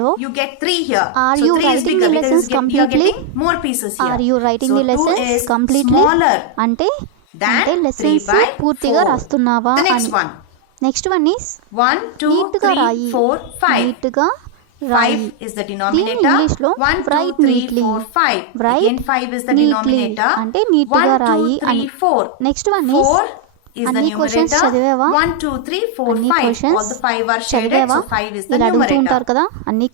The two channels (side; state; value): both; different; correlation 0.00